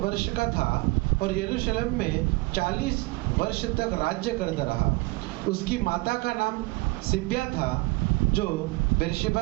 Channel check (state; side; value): quieter; left; 23.8 dB